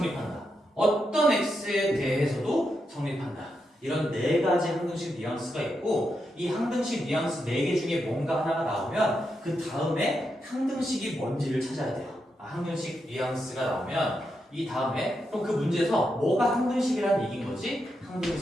어떤 x에 대해서도 성립한다. 이런 네 가지 항등식 뉘앙스가 있고 이 항등식 뉘앙스 4개 중에 뭔가 하나가 나오면 그 다음에 항등식이 뭔지를 찾아야 돼요. 항등식 뉘앙스가 나오면 이 다음에 또 그 문제에서 뭐가 항등식이라는 얘기인 거지?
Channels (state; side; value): normal; both; correlation 0.84